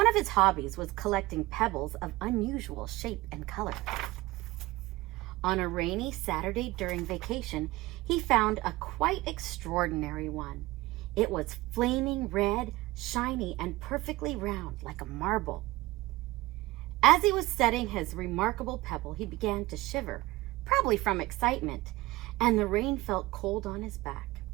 of his hobbies was collecting pebbles of unusual shape and color. On a rainy Saturday during vacation, he found a quite extraordinary one. It was flaming red, shiny, and perfectly round like a marble. As he was setting his remarkable pebble, he began to shiver, probably from excitement, and the rain felt cold on his back.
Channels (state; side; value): quieter; left; 19.7 dB